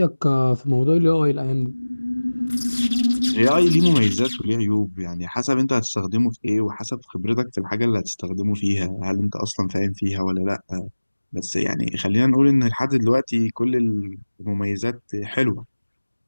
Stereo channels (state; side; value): inverted; both; correlation -1.00